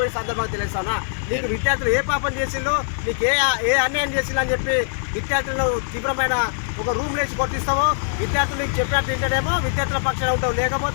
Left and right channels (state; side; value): silent; right; digital silence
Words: సందర్భంగా తెలుస్తానా. నీకు విద్యార్థులు ఏ పాపం చేసిందో, నీకు ఏ అన్యాయం చేసిందో అని చెప్పి విద్యార్థులను తీవ్రమైన ఒక రూమ్ లేచి కొట్టిస్తావో, విద్యార్థులు నీకు చెప్పినట్టు వింటేనేమో విద్యార్థుల పక్షాన ఉంటావు,